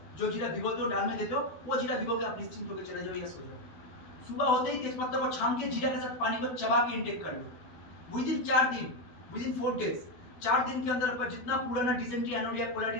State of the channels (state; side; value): late; right; 12 ms